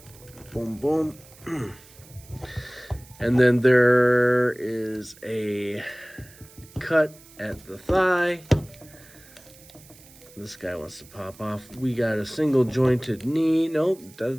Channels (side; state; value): right; noise; hiss, 23 dB below the sound